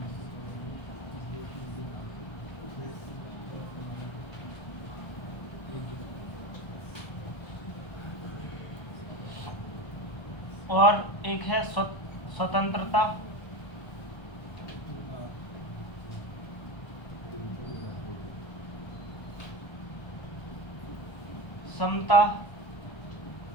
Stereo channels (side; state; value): right; late; 1.3 ms